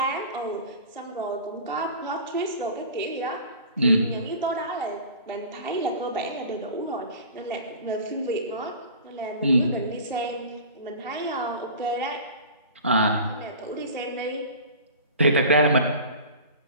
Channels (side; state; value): both; inverted; correlation -0.38